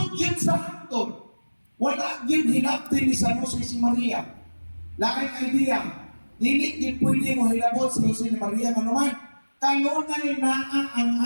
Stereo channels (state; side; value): inverted; both; correlation -1.00